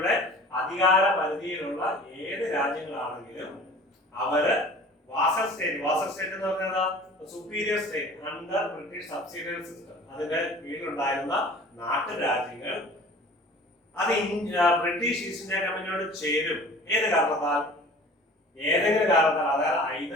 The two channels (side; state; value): both; normal; correlation 0.44